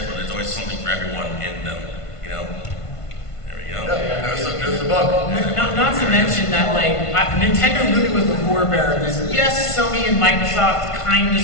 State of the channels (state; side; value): late; right; 1.5 ms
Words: but there's always something for everyone in them, There we go. Yeah, there's the book. Not to mention that, like, Nintendo really was the forebearer of this. Yes, Sony and Microsoft kind of